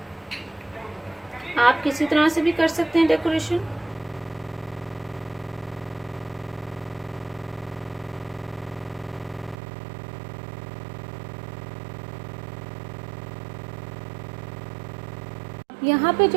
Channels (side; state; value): left; drops out; at 9.6 s